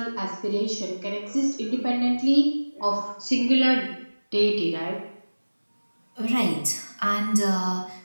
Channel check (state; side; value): inverted; both; correlation -1.00